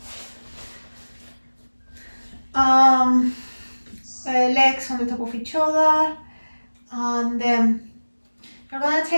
Legs on the top of each other, and you're going to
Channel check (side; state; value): both; inverted; correlation -1.00